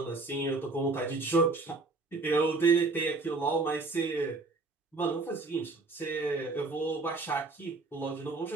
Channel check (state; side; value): quieter; left; 3.6 dB